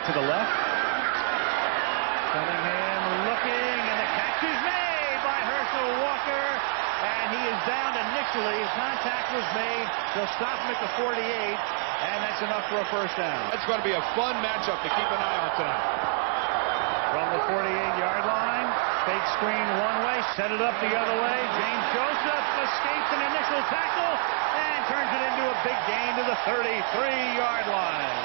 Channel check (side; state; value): left; silent; 60 dB below the other